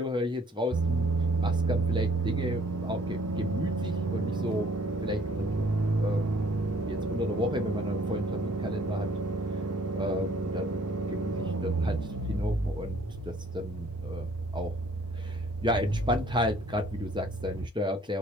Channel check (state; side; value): normal; both; correlation 0.59